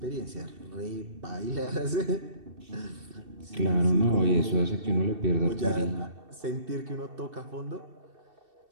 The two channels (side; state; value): left; late; 2.7 ms